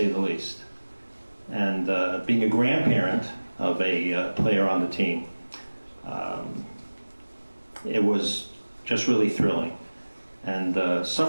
the least. And being a grandparent of a player on the team, it was just really thrilling. And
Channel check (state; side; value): inverted; both; correlation -1.00